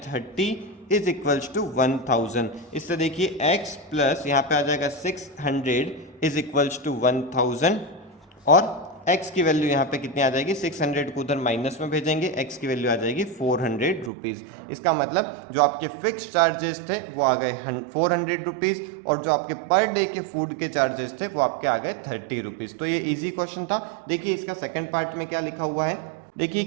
30 इज इक्वल्स टू 1000। इससे देखिए x प्लस यहाँ पे आ जाएगा 600 इज इक्वल्स टू 1000 और x की वैल्यू यहाँ पे कितनी आ जाएगी, 600 को उधर माइनस में भेजेंगे, x की वैल्यू आ जाएगी 400 रुपीज़। इसका मतलब जो आपके फिक्स चार्जेस थे वो आ गए 400 रुपीज़ और जो आपके पर डे के फूड के चार्जेस थे वो आपके आ गए 30 रुपीज़। तो ये इजी क्वेश्चन था। देखिए इसका सेकंड पार्ट में क्या लिखा हुआ है, देखिए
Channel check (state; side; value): drops out; left; at 14.1 s